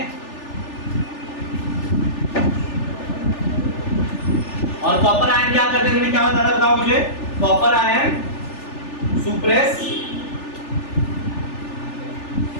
और कॉपर आयन क्या करते हैं, मैंने क्या बताया बताओ मुझे। Copper ion suppress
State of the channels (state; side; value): late; right; 3.4 ms